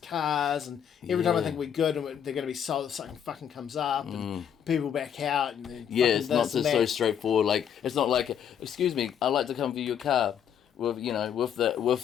and every time I Yeah. think we're good and they're going to be sold, something fucking comes up, and people back out, and then Yeah, fucking it's not this and just so that. straightforward. Like it's not like, excuse me, I'd like to come view your car. With the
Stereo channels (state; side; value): quieter; right; 8.7 dB